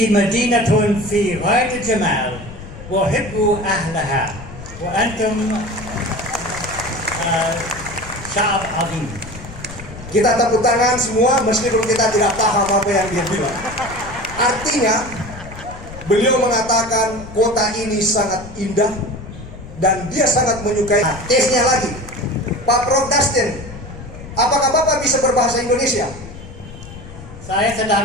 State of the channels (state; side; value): noise; left; rumble, 14 dB below the sound